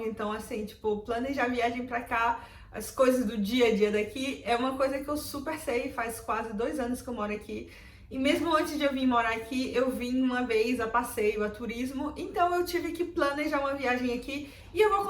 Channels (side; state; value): both; identical; correlation 1.00